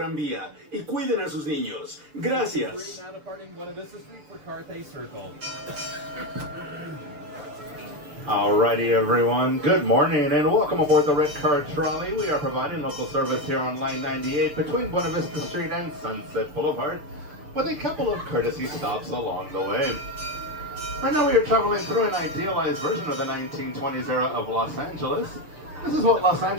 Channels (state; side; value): late; left; 6.8 ms